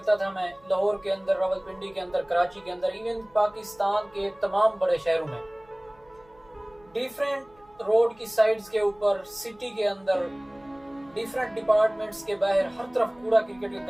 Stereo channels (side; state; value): right; noise; hum, 30 dB below the sound